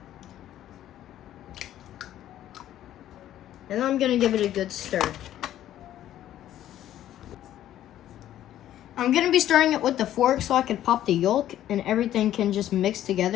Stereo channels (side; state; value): right; quieter; 12.3 dB